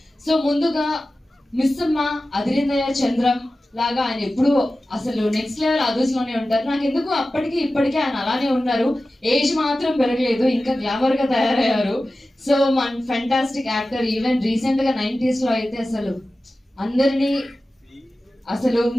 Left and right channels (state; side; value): normal; both; correlation 0.95